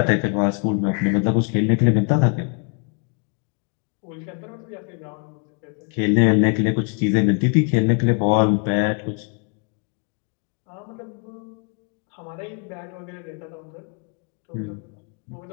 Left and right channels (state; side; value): quieter; right; 38.4 dB